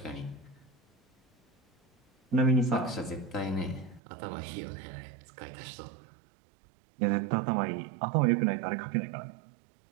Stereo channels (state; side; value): drops out; left; at 4.0 s